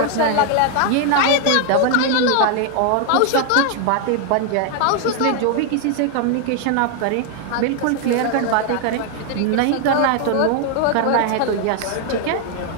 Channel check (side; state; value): both; different; correlation 0.00